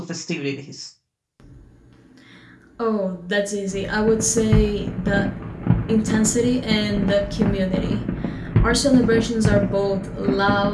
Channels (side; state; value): both; identical; correlation 1.00